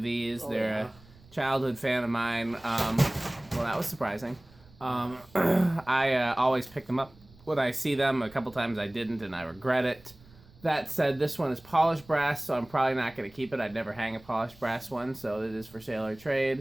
these. They're a childhood fan of mine. Well, that was surprising. I always pick them up when I see them. A couple times I didn't, and I regret it. That said, this one is polished brass, so I'm probably not going to keep it. I'd never hang a polished brass one, so it is for sale or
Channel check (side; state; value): right; noise; rumble, 25 dB below the sound